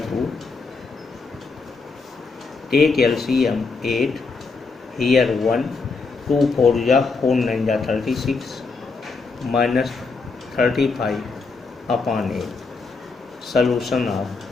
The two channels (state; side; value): quieter; right; 4.3 dB